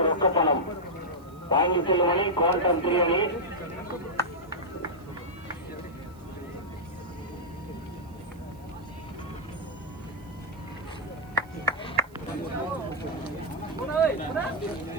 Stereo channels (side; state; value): right; noise; hiss, 29 dB below the sound